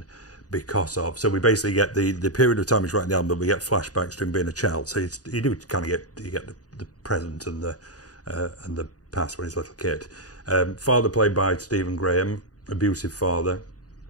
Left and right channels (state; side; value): late; right; 0.68 ms